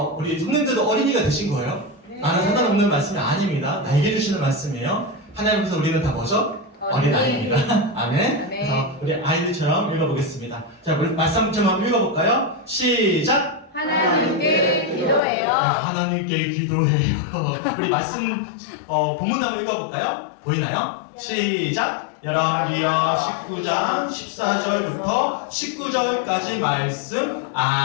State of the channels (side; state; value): right; drops out; at 15.2 s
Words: 우리 성령들도 어린이가 되신 거예요? 나는 상관없는 말씀이 아닙니다. 나에게 주시는 말씀이에요. 하나님께서 우리는 다 뭐죠? 어린아이입니다. 아멘. 그래서 우리 아이들처럼 읽어보겠습니다. 자, 우리 말씀 좀 한번 읽어볼까요? 시작! 하나님께 기도해요. 하나님께 기도해요. 우리 말씀 본문 한번 읽어볼까요? 보이나요? 시작! 열왕기하 19장 14절부터 19절까지 말씀.